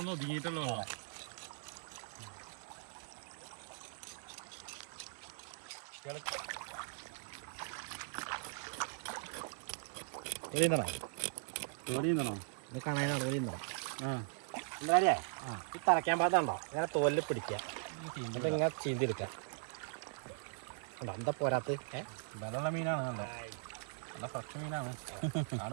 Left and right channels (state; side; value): silent; left; 51 dB below the other